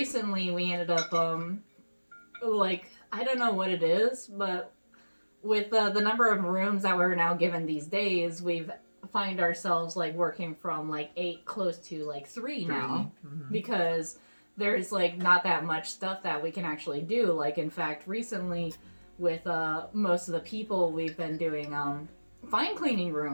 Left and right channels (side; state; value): both; inverted; correlation -1.00